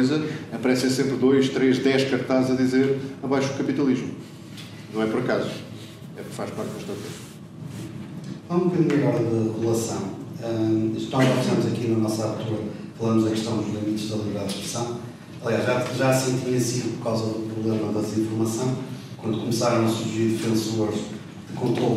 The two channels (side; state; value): both; identical; correlation 1.00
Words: aparecem sempre 2, 3, 10 cartazes a dizer abaixo o capitalismo. Não é por acaso. É porque faz parte da estratégia. Um bocadinho agora de relação. Nós já fizemos aqui na nossa abertura, falamos da questão dos limites da liberdade de expressão. Aliás, já assim tinha sido por causa do problema da desinformação, quando começaram a surgir defensores de